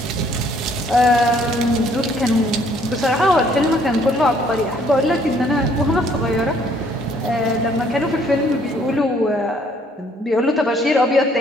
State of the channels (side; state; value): both; normal; correlation 0.63